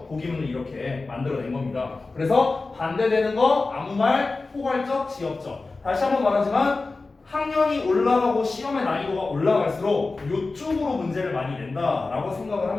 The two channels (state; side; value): quieter; right; 3.6 dB